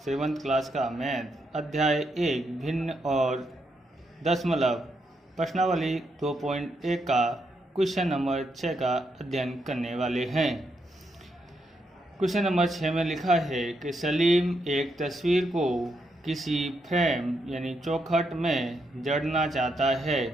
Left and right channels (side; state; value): both; normal; correlation 0.80